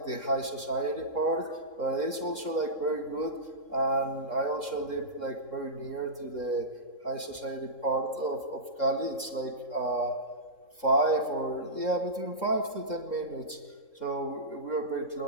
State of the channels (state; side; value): late; right; 3.7 ms